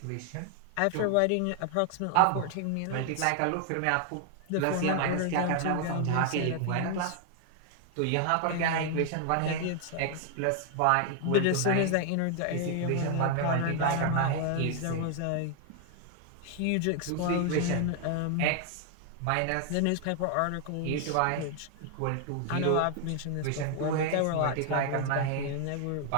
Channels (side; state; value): both; different; correlation 0.00